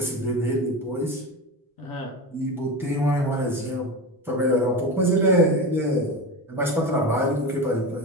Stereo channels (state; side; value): normal; both; correlation 0.24